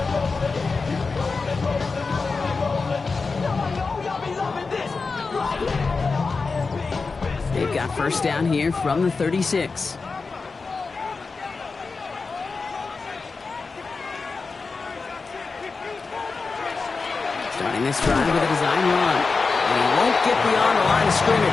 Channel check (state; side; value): quieter; right; 4.3 dB